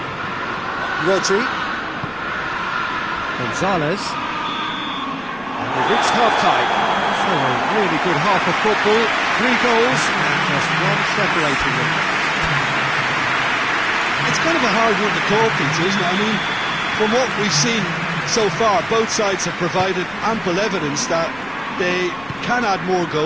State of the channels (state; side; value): noise; left; rumble, 24 dB below the sound